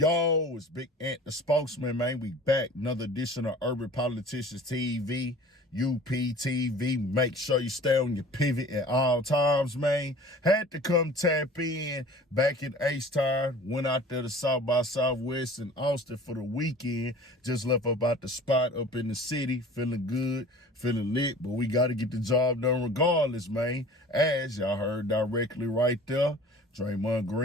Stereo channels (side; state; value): both; normal; correlation 0.44